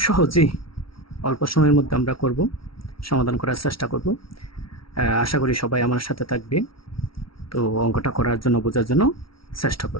সহজেই অল্প সময়ের মধ্যে আমরা করব, সমাধান করার চেষ্টা করব। আশা করি সবাই আমার সাথে থাকবে, তো অঙ্কটা করার জন্য, বোঝার জন্য চেষ্টা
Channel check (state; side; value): late; right; 0.75 ms